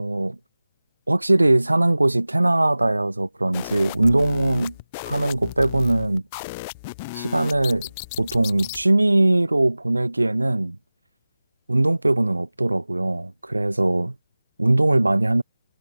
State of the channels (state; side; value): inverted; both; correlation -0.99